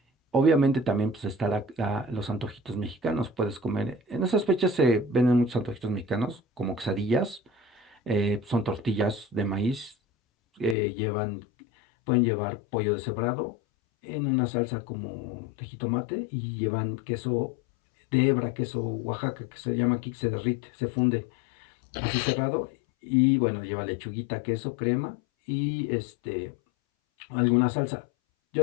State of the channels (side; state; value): right; drops out; at 10.8 s